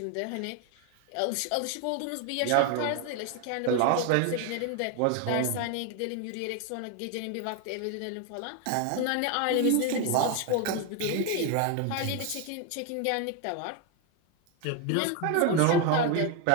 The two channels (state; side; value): different; both; correlation 0.01